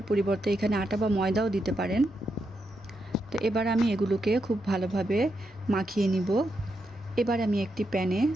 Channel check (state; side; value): normal; both; correlation 0.83